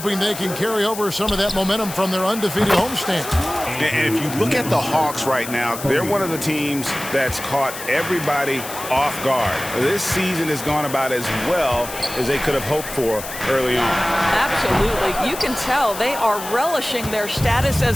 they can carry over some of that momentum from their undefeated homestand. And if you look at the Hawks right now, they're one of the teams that's caught everybody off guard. This season has gone about as well as they could have hoped for early on. Absolutely. You can tell they are relishing their status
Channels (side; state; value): left; noise; hiss, 10 dB below the sound